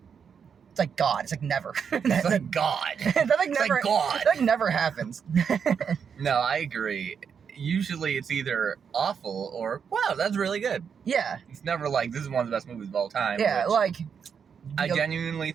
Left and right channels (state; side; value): quieter; left; 6.9 dB